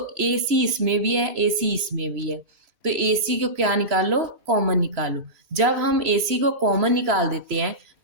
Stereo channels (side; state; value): left; late; 1.7 ms